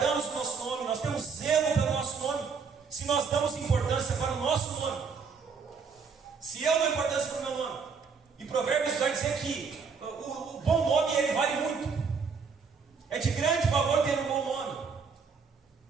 o nosso nome, nós temos zelo pelo nosso nome. Se nós damos importância para o nosso nome, se eu dou importância para o meu nome, e Provérbios vai dizer que o bom nome ele vale muito, é de grande valor ter um bom nome,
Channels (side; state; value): left; quieter; 5.4 dB